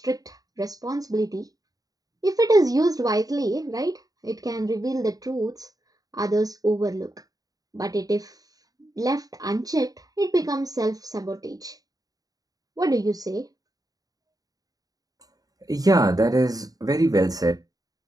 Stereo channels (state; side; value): late; left; 0.18 ms